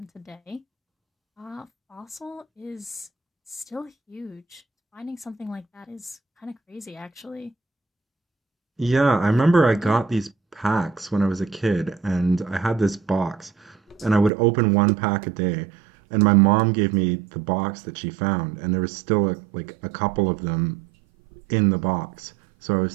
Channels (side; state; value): left; drops out; at 14.3 s